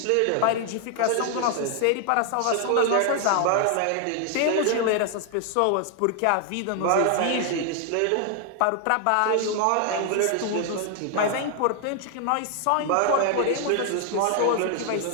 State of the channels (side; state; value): both; different; correlation 0.00